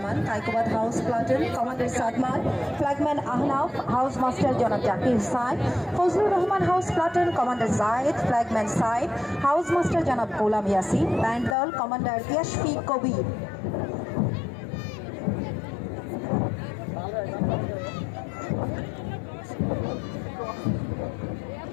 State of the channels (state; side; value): drops out; right; at 11.6 s